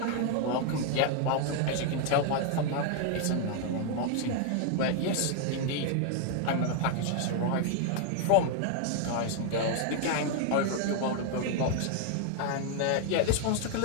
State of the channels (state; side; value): different; both; correlation 0.00